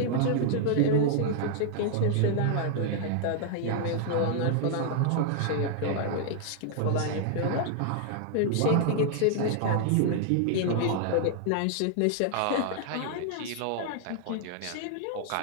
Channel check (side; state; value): both; different; correlation 0.00